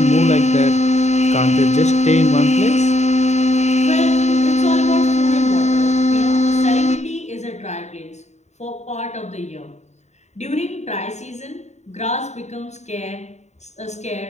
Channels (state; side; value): late; right; 0.33 ms